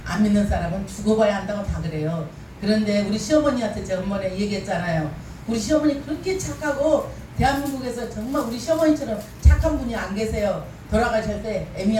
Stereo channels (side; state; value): both; identical; correlation 1.00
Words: 안 믿는 사람은 죽어봐야 한다고 다 그래요. 그런데 우리 시어머니한테 제가 한번에 얘기했잖아요. 우리 시어머니 그렇게 착하고 대한민국에서 정말 우리 시어머니처럼 착한 분이 안 계세요. 돌아가실 때